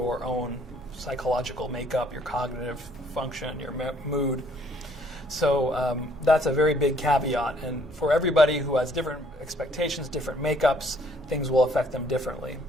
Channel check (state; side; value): normal; both; correlation 0.63